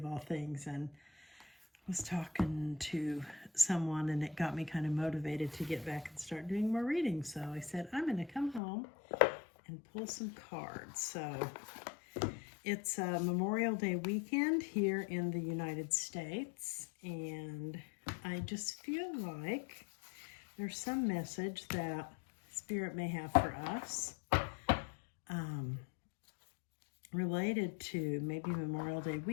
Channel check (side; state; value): right; drops out; at 8.6 s